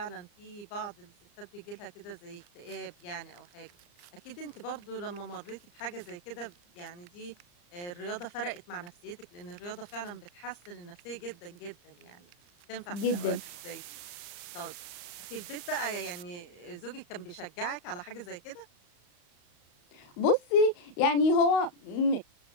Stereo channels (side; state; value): right; late; 34 ms